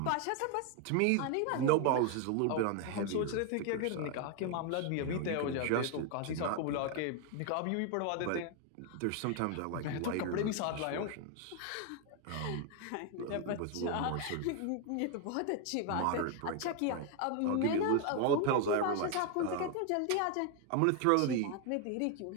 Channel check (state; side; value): different; both; correlation 0.01